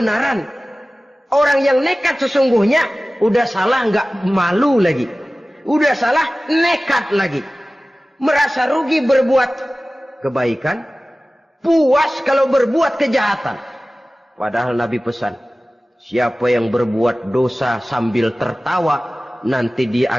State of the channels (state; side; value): normal; both; correlation 0.97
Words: Orang yang nekat sesungguhnya udah salah nggak malu lagi. Udah salah nekat lagi. Merasa rugi berbuat kebaikan, puas kalau berbuat kejahatan. Padahal Nabi pesan, siapa yang berbuat dosa sambil tertawa, nanti dia